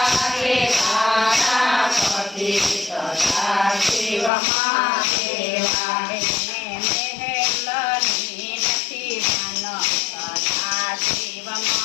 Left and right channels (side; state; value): right; drops out; at 4.3 s